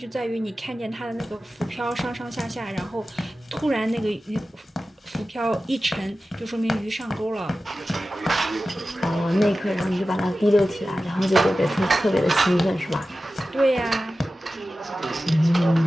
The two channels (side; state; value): both; normal; correlation 0.94